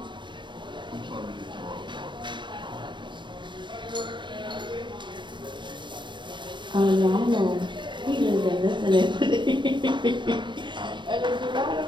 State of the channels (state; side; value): late; left; 0.23 ms